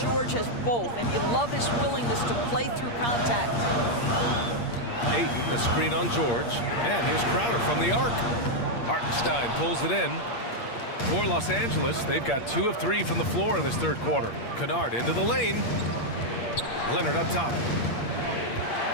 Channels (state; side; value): late; right; 8.5 ms